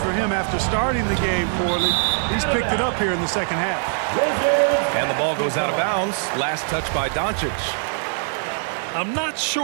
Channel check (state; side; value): silent; left; digital silence